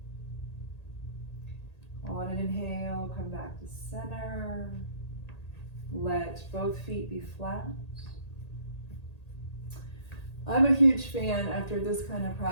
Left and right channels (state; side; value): late; right; 1.8 ms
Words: On an inhale, come back to center. Let both feet be flat. I'm a huge fan after this kind of